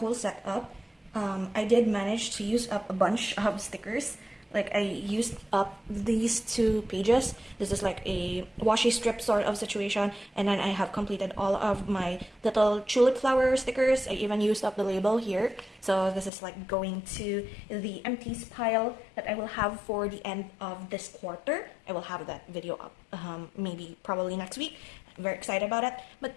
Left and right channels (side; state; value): right; drops out; at 16.3 s